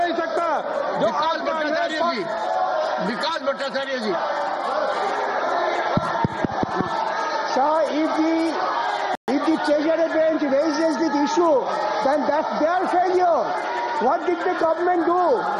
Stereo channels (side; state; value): both; identical; correlation 1.00